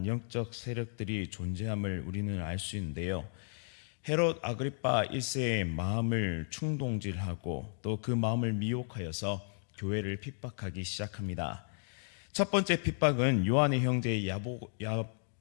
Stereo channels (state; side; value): silent; right; 55 dB below the other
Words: 영적 세력들이 존재함을 우리는 알 수 있는데요. 헤롯 아그리파 1세의 마음을 충동질하고 또 그 마음을 미혹하여서 교회를 핍박하기 시작합니다. 첫 번째 핍박은 요한의 형제